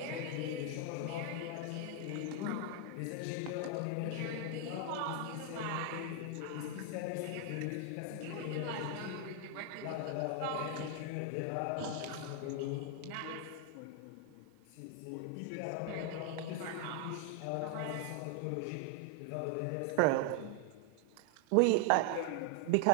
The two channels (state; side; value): different; both; correlation 0.00